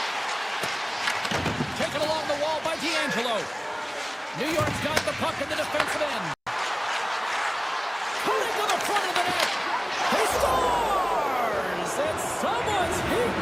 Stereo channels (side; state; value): both; identical; correlation 1.00